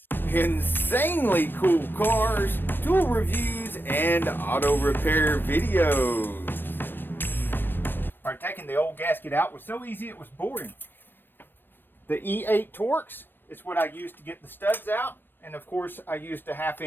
Insanely cool cars, tool reviews, and auto repair videos. Alright, taking the old gasket out was so easy it was boring. The E8 Torx is what I used to get the studs out, and of course I used a 1/2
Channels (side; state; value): right; late; 0.095 ms